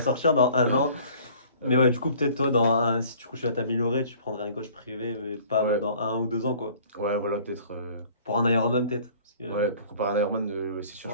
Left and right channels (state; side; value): inverted; both; correlation -0.52